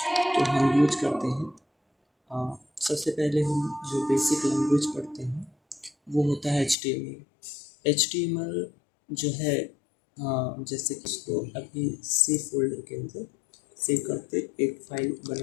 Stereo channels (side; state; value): right; drops out; at 6.8 s